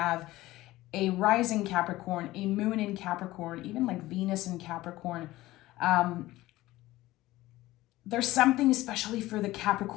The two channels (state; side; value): quieter; right; 17.3 dB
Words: a rising Capricorn, a moon in Capricorn, even like Venus in Capricorn, there's something especially for the